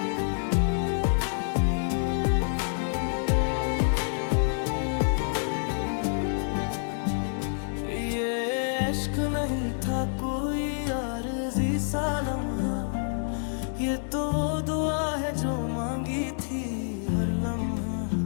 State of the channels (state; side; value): silent; right; digital silence